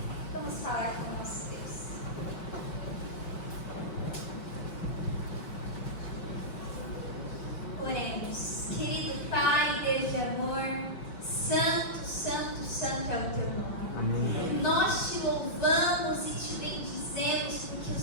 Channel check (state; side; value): late; right; 5.9 ms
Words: Vamos falar com o nosso Deus. Oremos. Querido Pai, Deus de amor, santo, santo, santo é o teu nome. Amém. Nós te louvamos e te bendizemos porque o